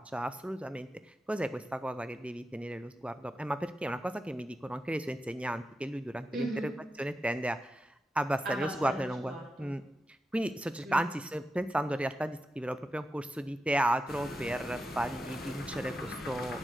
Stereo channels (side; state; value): both; normal; correlation 0.89